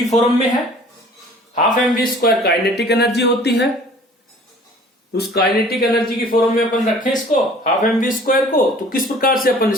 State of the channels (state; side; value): normal; both; correlation 0.50